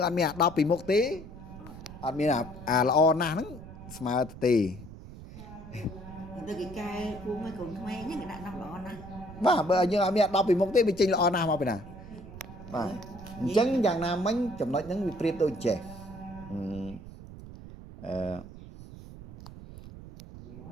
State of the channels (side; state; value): right; noise; rumble, 14 dB below the sound